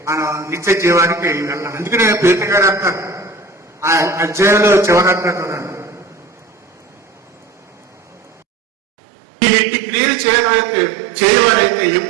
మనం నిత్య జీవానికి వెళ్ళాలి. అందుకనే పేతురు గారు అంటారు ఆ అధ్యాయంలో చివరంటారు, మీరు ఇంటి క్రియలు చేయవారైతే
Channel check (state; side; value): drops out; left; at 8.5 s